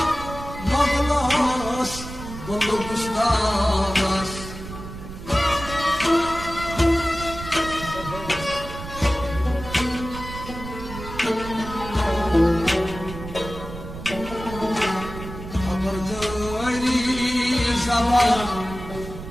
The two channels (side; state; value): right; noise; rumble, 11 dB below the sound